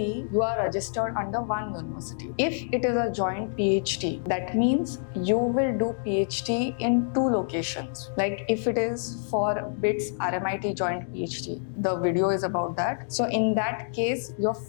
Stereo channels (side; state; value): right; silent; digital silence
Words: you are registered under one university. If it is a joint PhD, that means you will do PhD in two locations. Like if it is for BITS RMIT joint PhD, the video is about that. So in that case, your